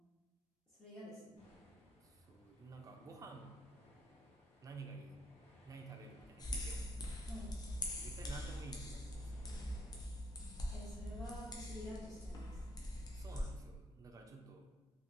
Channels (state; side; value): normal; both; correlation 0.74